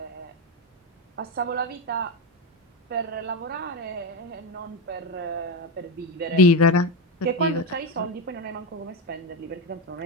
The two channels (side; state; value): both; normal; correlation 0.13